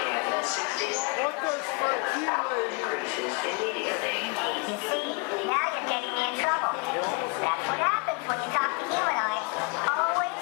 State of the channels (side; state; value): right; quieter; 31.3 dB